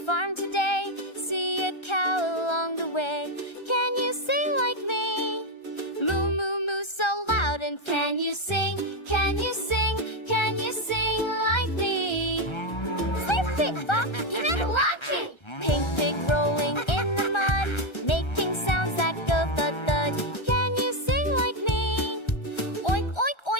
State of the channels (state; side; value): late; right; 1.3 ms